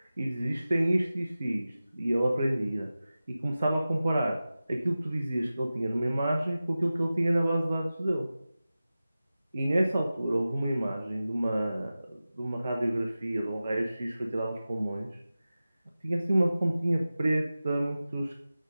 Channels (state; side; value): inverted; both; correlation -0.95